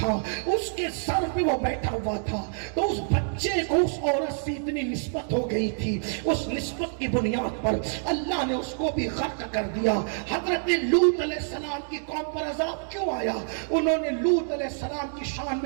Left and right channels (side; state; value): left; silent; digital silence